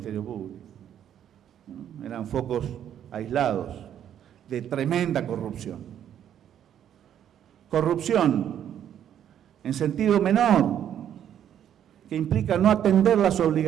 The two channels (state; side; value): quieter; left; 10.0 dB